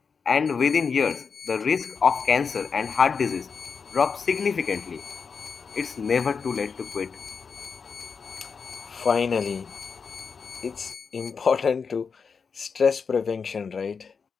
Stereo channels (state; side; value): quieter; right; 5.6 dB